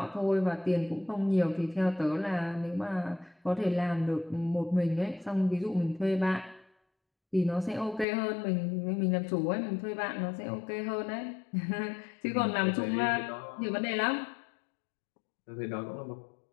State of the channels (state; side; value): drops out; right; at 8.1 s